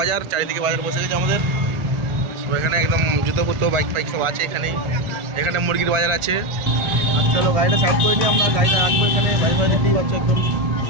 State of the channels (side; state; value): left; late; 1.4 ms